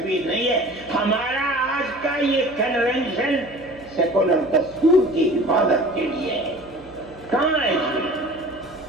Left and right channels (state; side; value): noise; right; hum, 24 dB below the sound